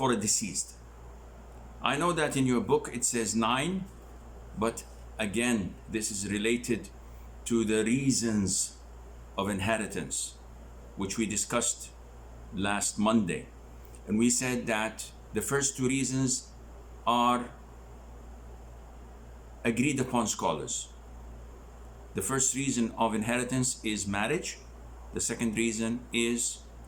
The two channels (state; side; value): identical; both; correlation 1.00